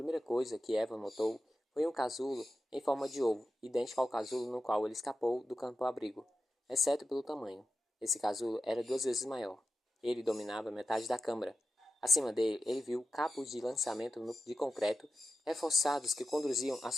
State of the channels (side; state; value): both; normal; correlation 0.92